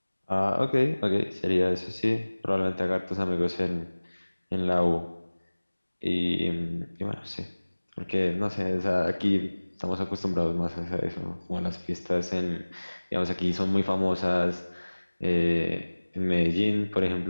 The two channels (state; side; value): inverted; both; correlation -1.00